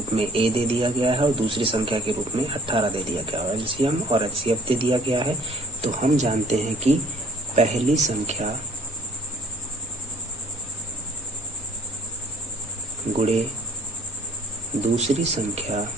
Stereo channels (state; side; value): normal; both; correlation 0.53